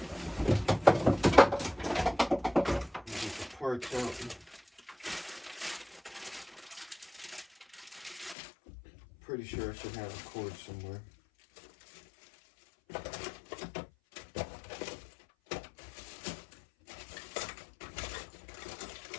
Get the parts out. Pretty sure I should have a cord somewhere.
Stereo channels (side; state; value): right; drops out; at 8.3 s